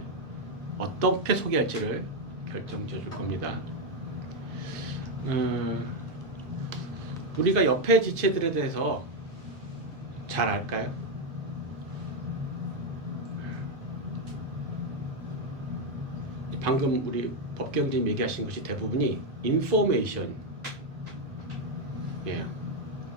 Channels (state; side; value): normal; both; correlation 0.05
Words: 어떻게 소개할지를 결정지어 줄 겁니다. 우리가 옆에 지체들에 대해서 잘 알까요? 방금 우리 법경님 얘기하신 것이 대부분이 인포메이션, 예,